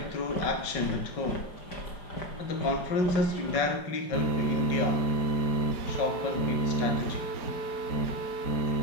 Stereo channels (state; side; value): late; right; 5.3 ms